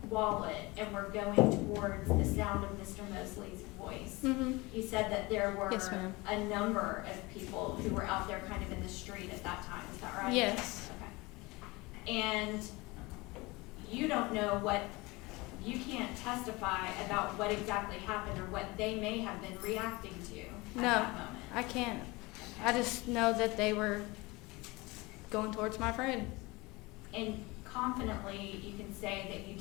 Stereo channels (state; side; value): quieter; right; 23.5 dB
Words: wallet and were going towards the sound of Mr. Moseley's voice. Mm-hmm. You said that there were Yes, ma'am. a number of people who were out there kind of in the street at that time. Is that right? Yes. Okay. And you don't know you can't testify about what exactly happened or what they may have been reacting to at No, that moment. I can't. I just know that they were going towards my friend. And confidently, you can say that you